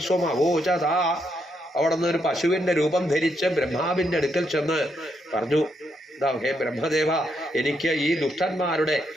സ്വമവോചത. അവിടെ നിന്ന് ഒരു പശുവിന്റെ രൂപം ധരിച്ച് ബ്രഹ്മാവിന്റെ അടുക്കൽ ചെന്ന് പറഞ്ഞു, ഹേ ബ്രഹ്മദേവ, എനിക്ക് ഈ ദുഷ്ടന്മാരുടെ,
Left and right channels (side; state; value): both; normal; correlation 0.78